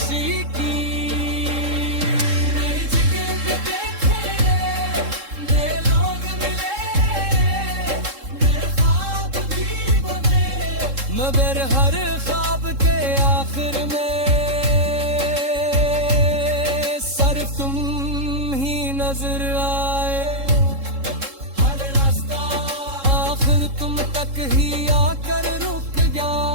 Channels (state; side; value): late; left; 3.7 ms